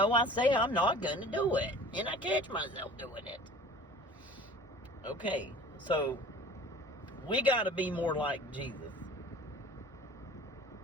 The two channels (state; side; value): normal; both; correlation 0.44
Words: I say I'm not going to do it, and I catch myself doing it. Okay, so we got to be more like Jesus.